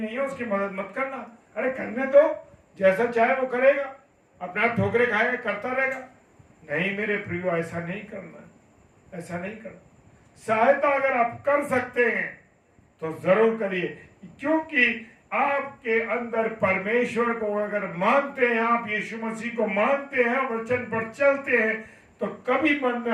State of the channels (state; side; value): identical; both; correlation 1.00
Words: है, उसकी मदद मत करना, अरे करने दो, जैसा चाहे वो करेगा, अपने आप ठोकरे खाएगा, करता रहेगा। नहीं मेरे प्रियो, ऐसा नहीं करना, ऐसा नहीं करना। सहायता अगर आप कर सकते हैं तो जरूर करिए, क्योंकि आपके अंदर परमेश्वर को अगर मानते हैं, आप यीशु मसीह को मानते हैं, वचन पर चलते हैं, तो कभी मन में